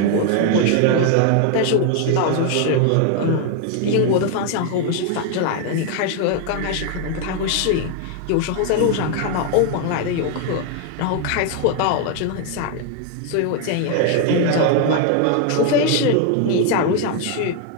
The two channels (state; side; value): different; both; correlation 0.01